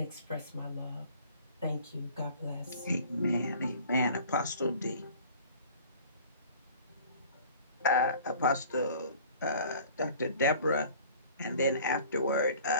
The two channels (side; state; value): both; inverted; correlation -0.48